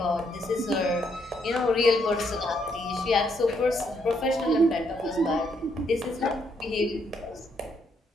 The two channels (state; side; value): normal; both; correlation 0.74